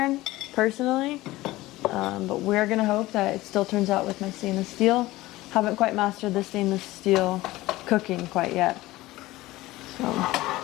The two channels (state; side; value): quieter; right; 18.2 dB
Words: personally, but we're gonna hope that it still turns out with my stainless steel. Haven't quite mastered the stainless steel cooking quite yet. So